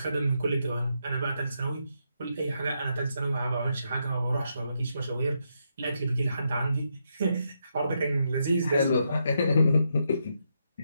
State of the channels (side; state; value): both; inverted; correlation -0.81